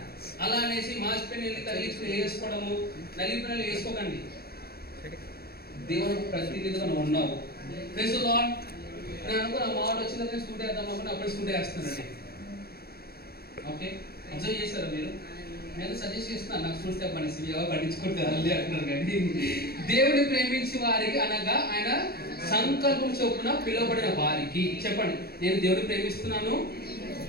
అలా అనేసి మాసిపోయిన తగిలించుకుని వేసుకోవడము, నలిపిన వేసుకోకండి. దేవునికి ప్రతినిధిగా నువ్వు ఉన్నావు. Praise the Lord. నేను అనుకున్న మాట వచ్చిందని స్కూటీ వేద్దాం అనుకుని అప్పుడే స్కూటీ వేస్తున్నానండి. ఓకే, అబ్జర్వ్ చేశారా మీరు? నేను సజెస్ట్ చేస్తున్నాను, నాకు స్కూల్ స్టెప్ అనేసి ఎవరు పట్టించుకుంటారు అంటున్నారు. కానీ దేవుని ప్రేమించి వారికి అనగా ఆయన సంకల్పం చొప్పున పిలువబడిన వారికి. చెప్పండి, నేను దేవుని ప్రేమిస్తున్నాను.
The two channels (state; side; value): late; right; 0.45 ms